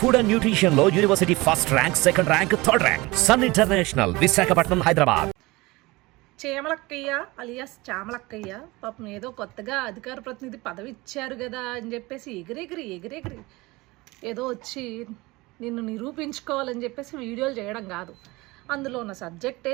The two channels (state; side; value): quieter; left; 22.0 dB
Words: Food and Nutrition లో university first rank, second rank, third rank. Sun international, Visakhapatnam, Hyderabad. చేమలక్కయ్య alias చామలక్కయ్య పాపం ఏదో కొత్తగా అధికార ప్రతినిధి పదవి ఇచ్చారు కదా అని చెప్పేసి ఎగిరెగిరి ఏదో వచ్చి నిన్ను నిరూపించుకోవాలని చెప్పేసి వీడియోలు చేయడం కాదు. అందులో ఉన్న సబ్జెక్ట్